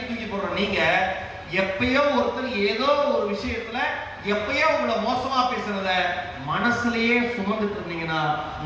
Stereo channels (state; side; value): identical; both; correlation 1.00